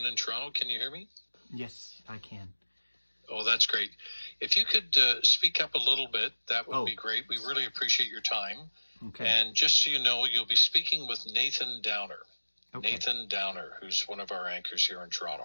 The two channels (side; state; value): both; inverted; correlation -1.00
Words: in Toronto. Can you hear me? Yes, I can. Oh, that's great. If you could speak up a little bit, that would be great. We really appreciate your time. Okay. And just so you know, you'll be speaking with Nathan Downer. Okay. Nathan Downer, who's one of our anchors here in